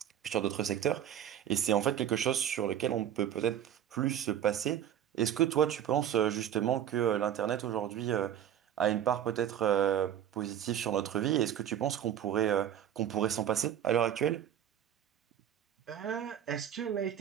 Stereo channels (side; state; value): left; quieter; 10.1 dB